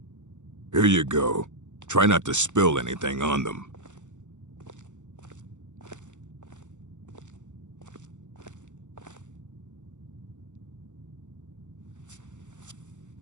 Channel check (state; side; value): late; left; 0.85 ms